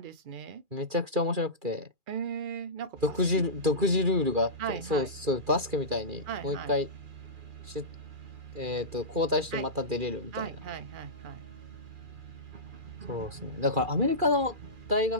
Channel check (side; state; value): left; late; 2.4 ms